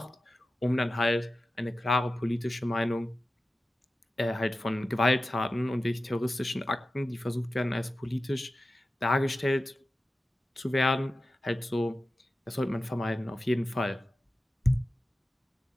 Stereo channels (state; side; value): normal; both; correlation 0.94